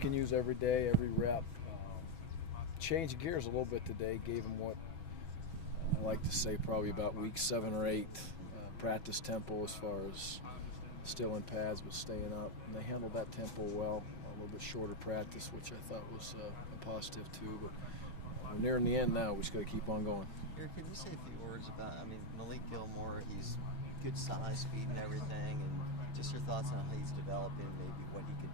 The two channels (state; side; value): late; right; 6.1 ms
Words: use every day, every rep. Change gears a little bit today. Gave them what I like to say probably about week 7 or 8 practice tempo as far as still in pads but staying up. And they handled that tempo well. A little bit shorter practice, which I thought was a positive too. But we're nearing the end now. We just got to keep on going. Can you say a few words about, Malik Gilmore, he's good size, speed and everything, and just your thoughts on how he's developing, maybe what he could